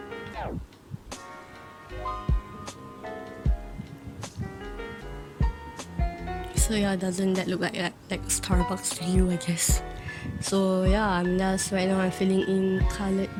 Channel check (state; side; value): identical; both; correlation 1.00